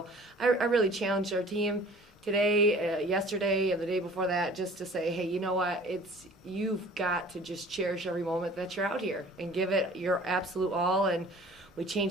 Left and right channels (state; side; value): normal; both; correlation 0.48